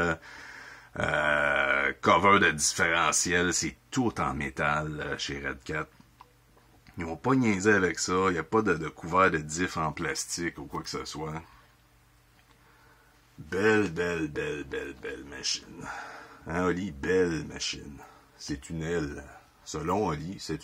cover de différentiel, c'est tout en métal chez Redcat. Ils n'ont pas niaisé avec ça. Il n'y a pas de couvert de diff en plastique ou quoi que ce soit. Belle machine. Hein, Oli? Belle machine. C'est une L. Selon Oli, c'est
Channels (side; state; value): both; identical; correlation 1.00